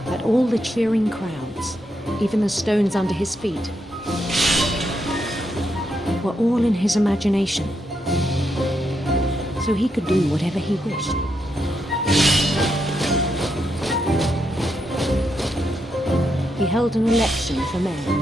that all the cheering crowds, even the stones under his feet, were all in his imagination. So he could do whatever he wished. He held an election for mayor.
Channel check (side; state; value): both; normal; correlation 0.81